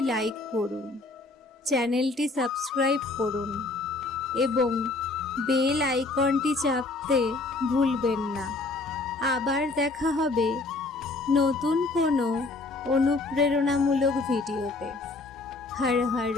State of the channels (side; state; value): right; quieter; 3.3 dB